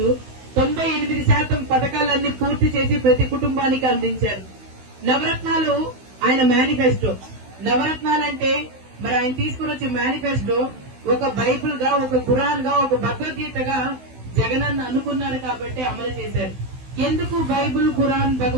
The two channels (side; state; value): left; late; 16 ms